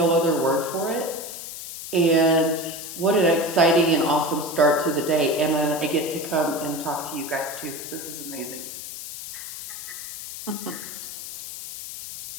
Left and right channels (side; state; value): left; noise; hiss, 10 dB below the sound